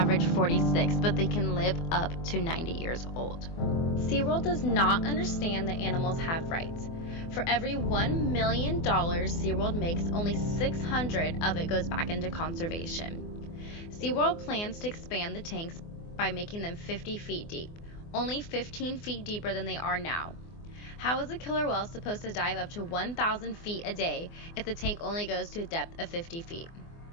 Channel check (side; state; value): right; late; 24 ms